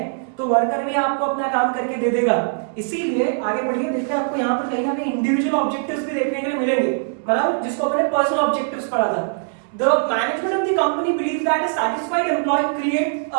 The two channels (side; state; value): left; silent; 65 dB below the other